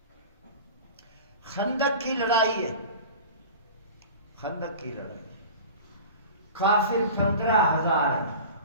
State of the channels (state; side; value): inverted; both; correlation -0.36